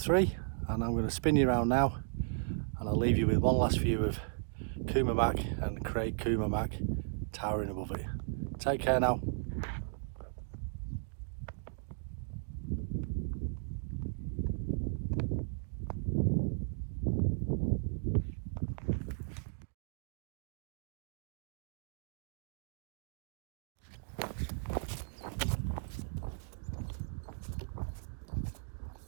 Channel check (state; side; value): silent; left; digital silence